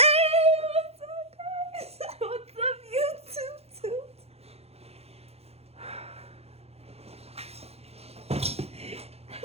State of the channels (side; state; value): left; late; 0.30 ms